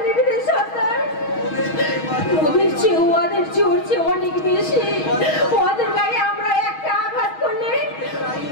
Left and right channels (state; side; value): late; right; 6.3 ms